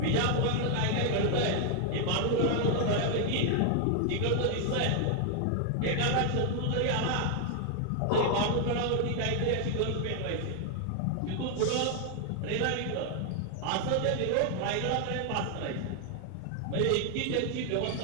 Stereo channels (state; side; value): different; both; correlation 0.00